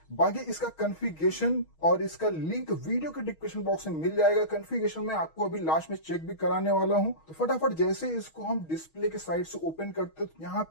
बाकी इसका कॉन्फ़िगरेशन और इसका लिंक वीडियो के डिस्क्रिप्शन बॉक्स में मिल जाएगा। कॉन्फ़िगरेशन में आपको अभी लास्ट में चेक भी कराने वाला हूं। तो फटाफट जैसे इसको हम डिस्प्ले के साइड से ओपन करते हैं तो यहाँ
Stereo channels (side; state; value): right; late; 6.3 ms